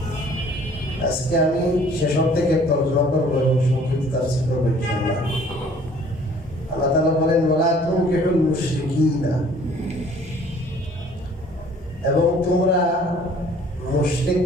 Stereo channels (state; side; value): normal; both; correlation 0.54